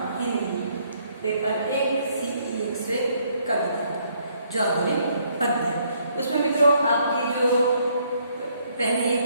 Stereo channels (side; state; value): both; inverted; correlation -0.68